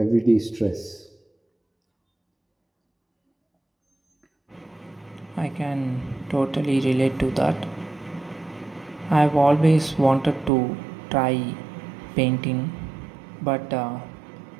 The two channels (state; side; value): drops out; left; at 10.5 s